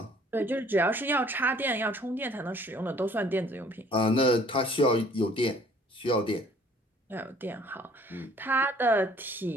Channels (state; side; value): normal; both; correlation 0.56